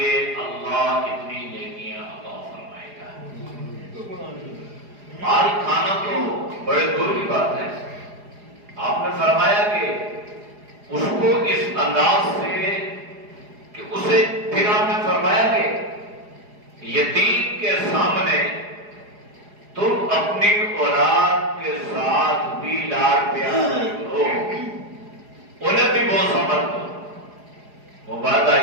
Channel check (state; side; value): late; left; 4.8 ms